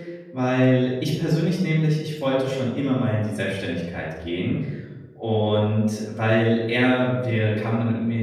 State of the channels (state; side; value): identical; both; correlation 1.00